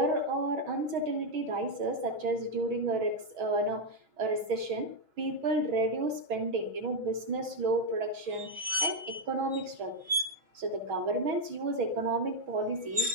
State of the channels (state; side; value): late; left; 6.3 ms